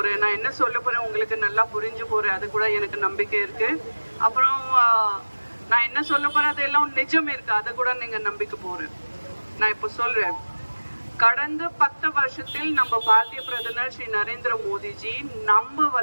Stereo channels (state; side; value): inverted; both; correlation -1.00